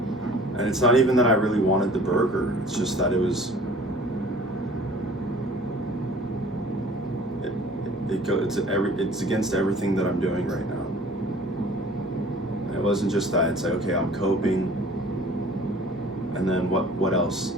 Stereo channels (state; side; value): normal; both; correlation 0.49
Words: And it's not even that I really wanted the burger. It's just that it it's against everything that I'm doing right now. And it wasn't just that. It's like, okay, I'm coping, and then what else?